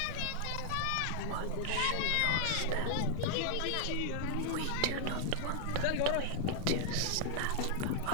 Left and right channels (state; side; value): different; both; correlation -0.01